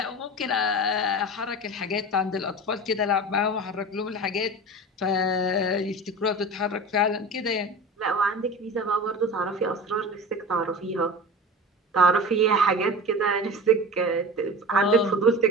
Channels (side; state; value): both; normal; correlation 0.33